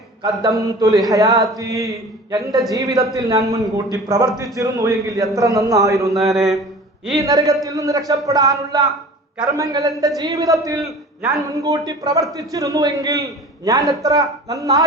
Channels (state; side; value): normal; both; correlation 0.41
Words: ഖദ്ദംതു ലിഹയാതി, എന്റെ ജീവിതത്തിൽ ഞാൻ മുൻകൂട്ടി പ്രവർത്തിച്ചിരുന്നു എങ്കിൽ എത്ര നന്നായിരുന്നേനെ. ഈ നരകത്തിൽ നിന്ന് രക്ഷപ്പെടാനുള്ള കർമ്മങ്ങൾ എന്റെ ജീവിതത്തിൽ ഞാൻ മുൻകൂട്ടി പ്രവർത്തിച്ചിരുന്നുവെങ്കിൽ ഞാൻ എത്ര